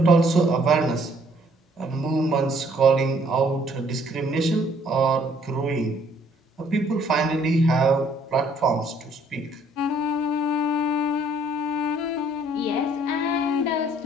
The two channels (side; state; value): both; normal; correlation 0.63